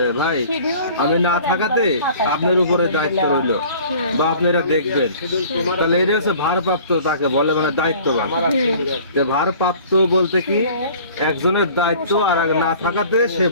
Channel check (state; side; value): inverted; both; correlation -0.48